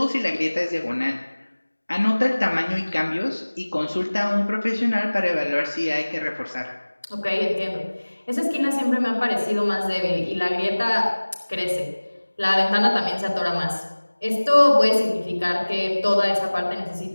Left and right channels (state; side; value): inverted; both; correlation -1.00